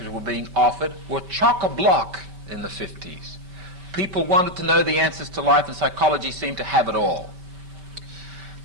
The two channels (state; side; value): late; left; 5.2 ms